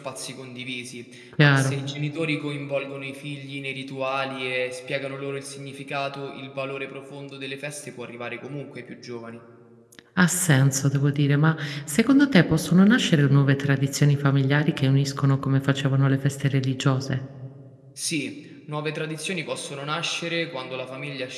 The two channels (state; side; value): identical; both; correlation 1.00